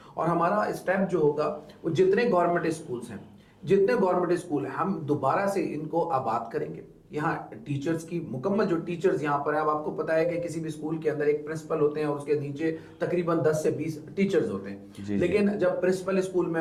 اور ہمارا اسٹیپ جو ہوگا, وہ جتنے گورنمنٹ اسکولز ہیں, جتنے گورنمنٹ اسکول ہیں, ہم دوبارہ سے ان کو آباد کریں گے. یہاں ٹیچرز کی مکمل جو ٹیچرز یہاں پر ہیں, اب آپ کو پتا ہے کہ کسی بھی اسکول کے اندر ایک پرنسپل ہوتے ہیں اور اس کے نیچے تقریباً 10 سے 20 ٹیچرز ہوتے ہیں. لیکن جب پرنسپل اسکول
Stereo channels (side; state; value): both; identical; correlation 1.00